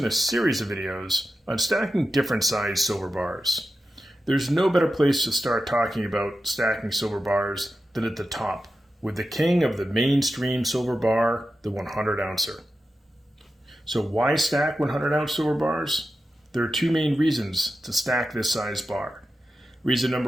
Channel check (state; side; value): normal; both; correlation 0.91